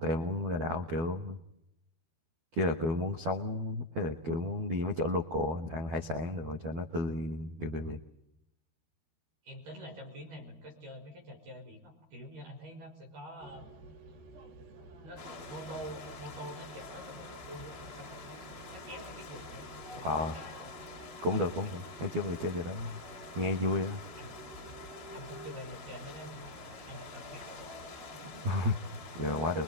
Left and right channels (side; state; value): left; late; 12 ms